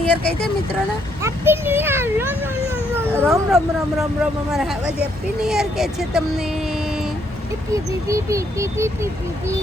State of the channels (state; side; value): normal; both; correlation 0.72